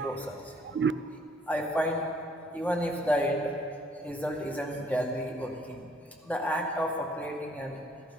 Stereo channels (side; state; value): both; normal; correlation 0.62